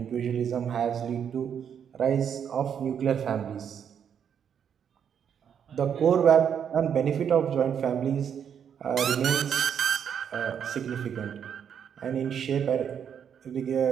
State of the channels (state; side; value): quieter; left; 8.1 dB